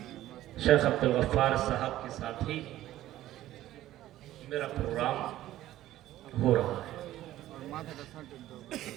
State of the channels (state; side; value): quieter; left; 14.2 dB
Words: شیخ عبدالغفار صاحب کے ساتھ ہی میرا پروگرام ہو رہا ہے۔